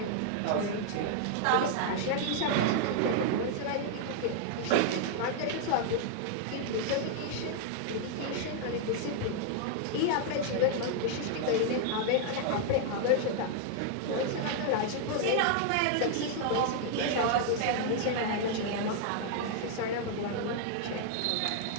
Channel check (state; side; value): different; both; correlation 0.00